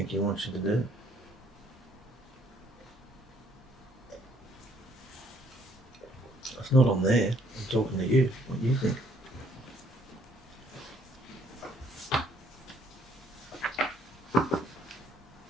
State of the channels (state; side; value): normal; both; correlation 0.64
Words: he wants you to do? It's not on there. I'm talking to you. What do you think?